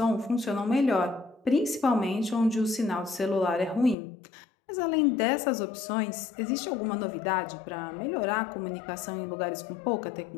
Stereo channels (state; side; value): drops out; right; at 4.0 s